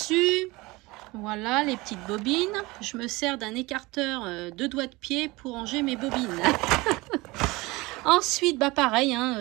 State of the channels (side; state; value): left; quieter; 22.4 dB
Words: Voilà, les petites bobines. Je me sers d'un écarteur de doigts de pied pour ranger mes bobines. Ensuite, bah pareil,